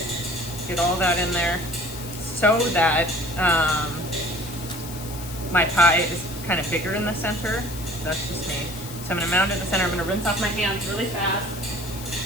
get all that in there so that my pie is kind of bigger in the center. That's just me. So I'm gonna mound it in the center. I'm gonna rinse off my hands really fast.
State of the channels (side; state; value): left; noise; hiss, 13 dB below the sound